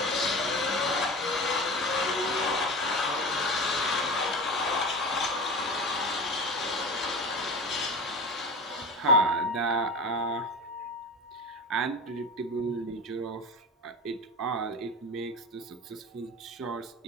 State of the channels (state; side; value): normal; both; correlation 0.30